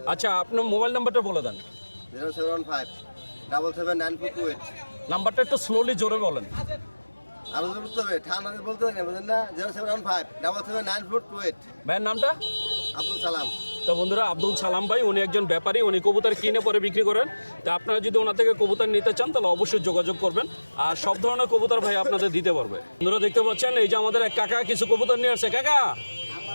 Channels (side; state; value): both; inverted; correlation -1.00